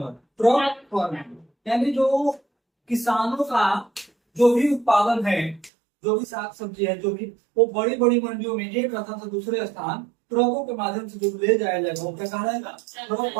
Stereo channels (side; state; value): left; drops out; at 5.7 s